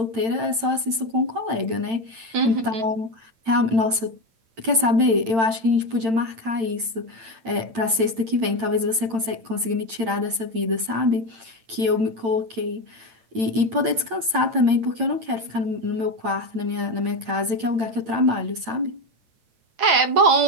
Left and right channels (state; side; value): late; left; 8.9 ms